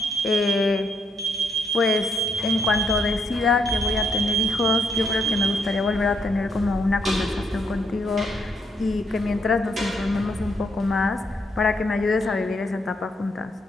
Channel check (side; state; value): both; normal; correlation 0.75